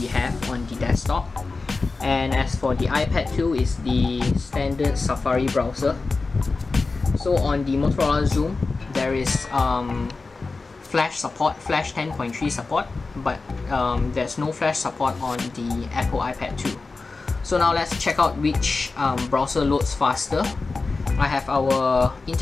have on the desktop. And as for the iPad 2, is the standard Safari browser. So on the Motorola Xoom, there is Flash support, Flash 10.3 support, but there's no Flash support on the Apple iPad 2. So now let's check out which browser loads faster. I have our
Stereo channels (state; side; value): quieter; right; 3.9 dB